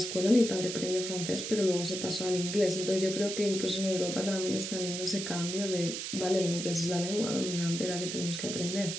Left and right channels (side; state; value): right; noise; hiss, 5 dB below the sound